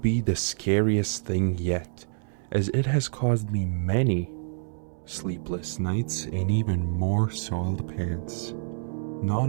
be the scariest thing yet, as it has caused me many sleepless nights and even more soiled pants.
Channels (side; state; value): left; silent; 60 dB below the other